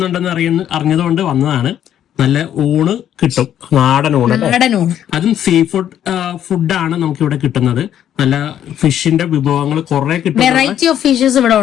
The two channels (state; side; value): quieter; right; 10.5 dB